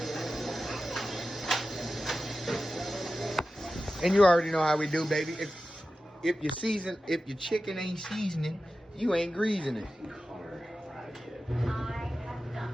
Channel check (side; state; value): both; normal; correlation 0.94